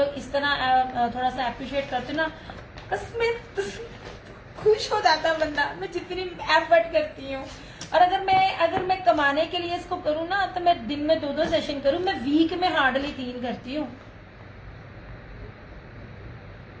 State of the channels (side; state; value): both; identical; correlation 1.00